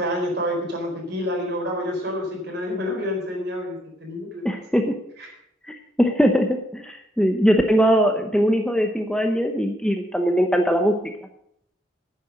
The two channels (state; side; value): normal; both; correlation 0.75